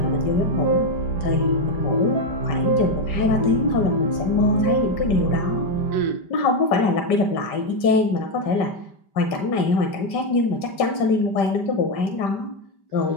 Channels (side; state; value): right; late; 5.1 ms